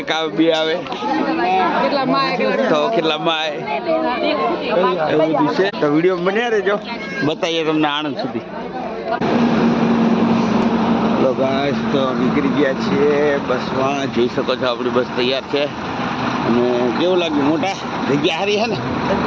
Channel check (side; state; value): both; identical; correlation 1.00